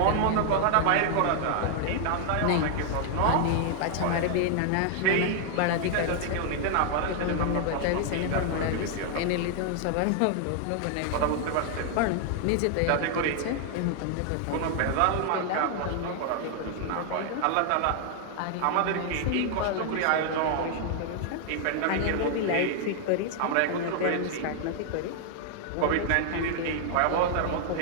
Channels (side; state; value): both; different; correlation 0.00